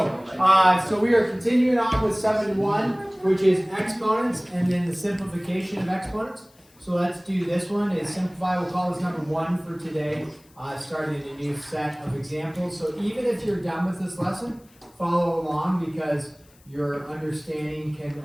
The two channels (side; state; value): left; noise; hiss, 30 dB below the sound